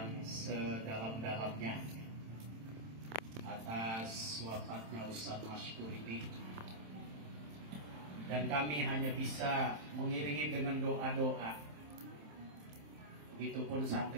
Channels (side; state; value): left; late; 27 ms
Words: sedalam-dalamnya atas wafatnya Ustaz Maskur ini. Dan kami hanya bisa mengiringi dengan doa-doa. Begitupun